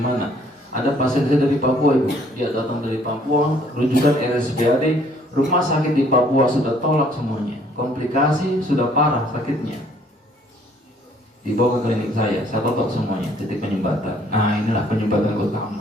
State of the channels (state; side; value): normal; both; correlation 0.61